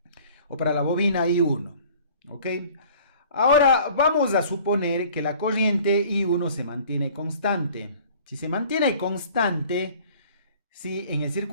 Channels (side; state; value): both; inverted; correlation -0.50